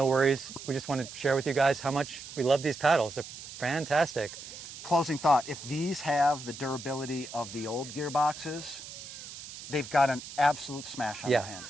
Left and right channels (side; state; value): right; noise; hiss, 13 dB below the sound